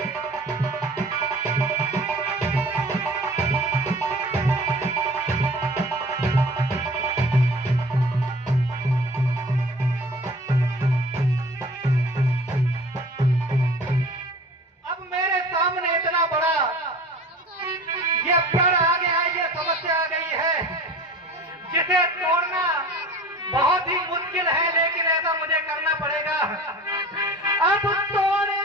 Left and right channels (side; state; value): both; normal; correlation 0.42